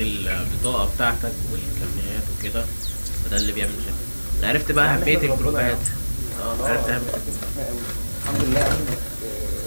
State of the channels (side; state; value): both; inverted; correlation -1.00